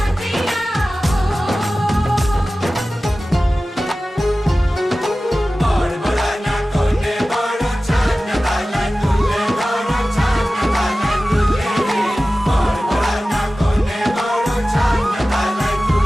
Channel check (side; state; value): both; normal; correlation 0.96